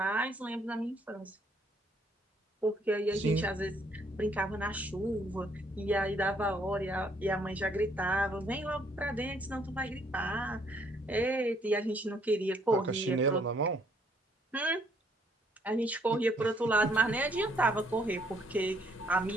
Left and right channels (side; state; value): both; normal; correlation 0.67